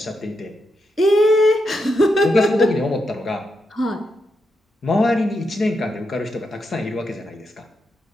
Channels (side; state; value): both; normal; correlation 0.84